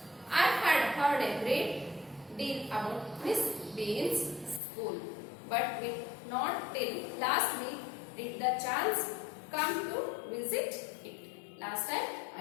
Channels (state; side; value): drops out; right; at 4.6 s